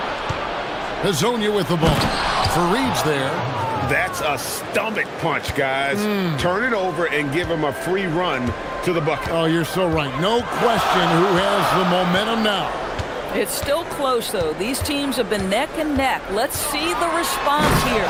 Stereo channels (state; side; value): identical; both; correlation 1.00